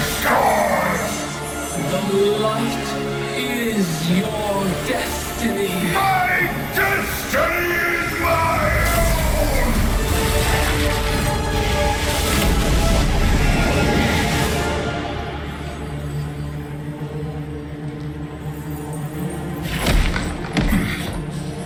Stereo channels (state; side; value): identical; both; correlation 1.00